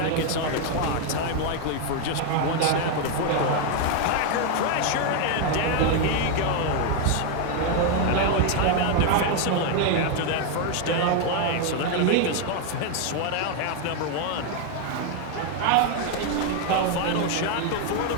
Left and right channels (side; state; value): both; different; correlation 0.01